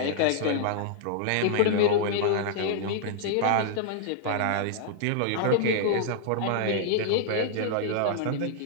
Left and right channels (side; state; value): both; different; correlation -0.01